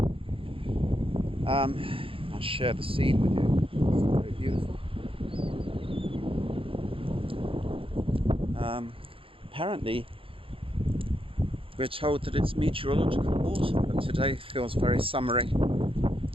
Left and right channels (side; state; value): left; late; 0.26 ms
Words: I'll share the scene with you. It's very beautiful. Apparently we're told that it's meteorological autumn, but today feels very summery.